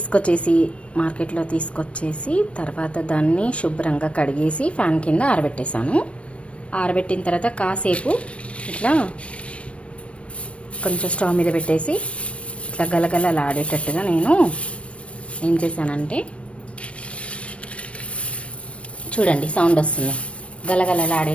మార్కెట్లో తీసుకొచ్చేసి తర్వాత దాన్ని శుభ్రంగా కడిగేసి ఫ్యాన్ కింద ఆరబెట్టేశాను. ఆరబెట్టిన తర్వాత కాసేపు ఇట్లా కొంచెం స్టవ్ మీద పెట్టేసి ఇట్లా గలగలలాడేటట్టుగా నేను ఏం చేశానంటే, చూడండి సౌండ్ వస్తుంది,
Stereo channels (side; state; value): right; late; 0.061 ms